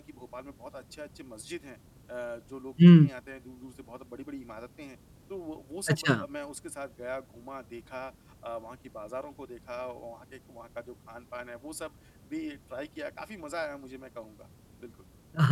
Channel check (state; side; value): identical; both; correlation 1.00